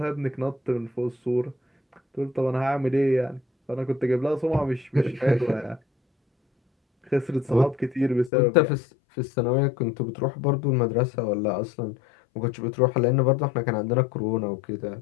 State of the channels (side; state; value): right; drops out; at 8.3 s